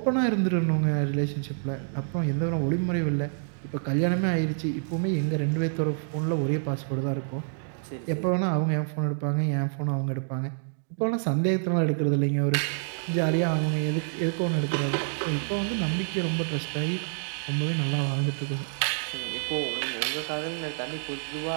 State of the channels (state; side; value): silent; left; digital silence